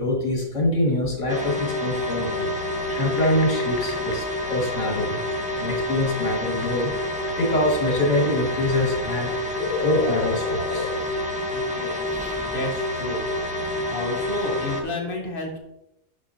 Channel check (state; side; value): normal; both; correlation -0.13